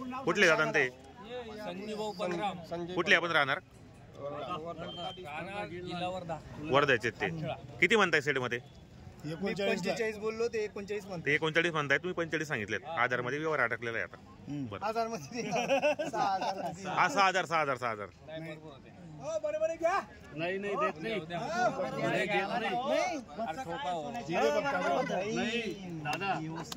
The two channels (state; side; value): identical; both; correlation 1.00